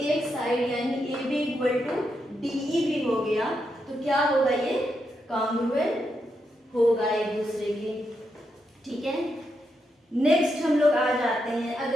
एक साइड यानी A B equal to D E भी हो गया, तो क्या होगा, ये कॉन्ग्रुएंट होगा एक दूसरे की, ठीक है। नेक्स्ट हम लोग आ जाते हैं,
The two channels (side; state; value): both; normal; correlation 0.83